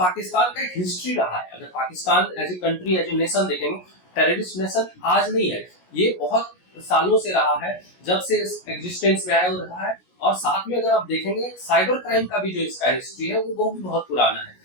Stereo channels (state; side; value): late; right; 17 ms